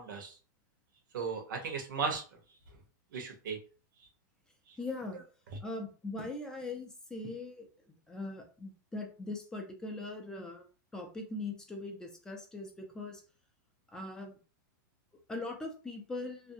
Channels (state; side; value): normal; both; correlation 0.26